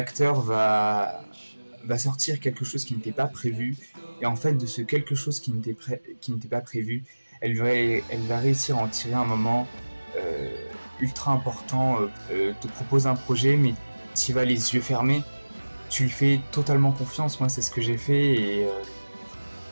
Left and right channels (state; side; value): inverted; both; correlation -1.00